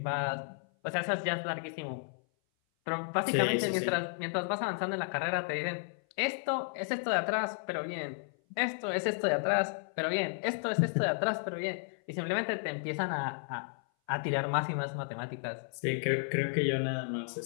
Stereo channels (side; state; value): right; silent; 56 dB below the other